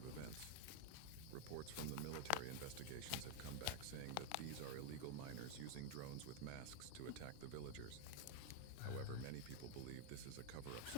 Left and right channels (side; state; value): both; different; correlation 0.01